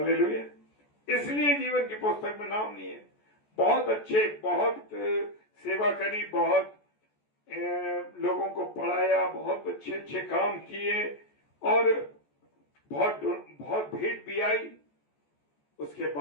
इसलिए जीवन की पुस्तक में नाम नहीं है। बहुत अच्छे, बहुत सेवा करी, बहुत लोगों को पढ़ाया, बहुत अच्छे अच्छे काम किए और बहुत भेंट भी आई। उसके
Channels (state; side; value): late; right; 14 ms